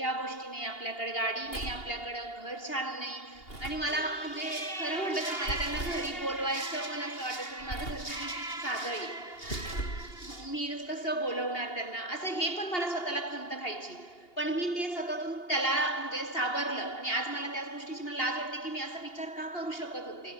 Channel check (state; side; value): late; right; 2.8 ms